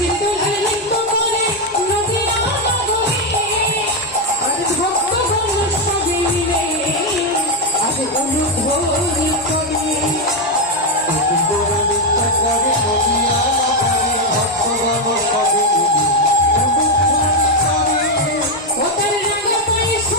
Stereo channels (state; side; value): normal; both; correlation 0.04